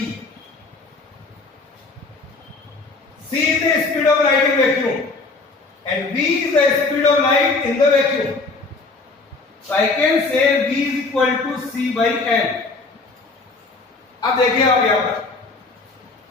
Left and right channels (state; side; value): quieter; right; 3.7 dB